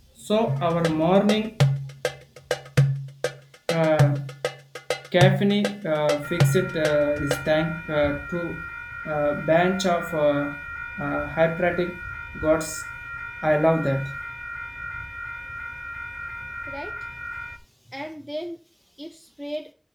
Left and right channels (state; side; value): identical; both; correlation 1.00